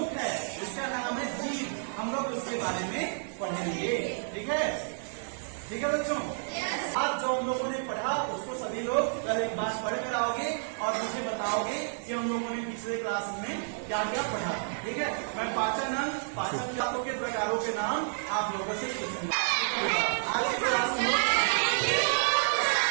है के बारे में पढ़ेंगे। ठीक है, ठीक है बच्चों। आज जो हम लोगों ने पढ़ा उसको सभी लोग कल एक बार पढ़ कर आओगे और मुझे बताओगे कि हम लोगों ने पिछले क्लास में क्या क्या पढ़ा। ठीक है, मैं पाचन के प्रकारों के नाम आप लोगों से पूछूंगा। आज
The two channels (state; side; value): silent; left; digital silence